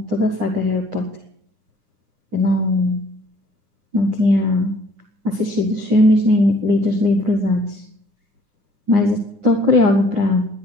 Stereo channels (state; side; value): late; left; 9.8 ms